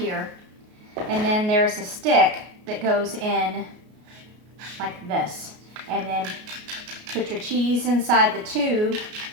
And then there's a stick that goes in like this. And then put your cheese inside the tube,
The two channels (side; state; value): left; late; 33 ms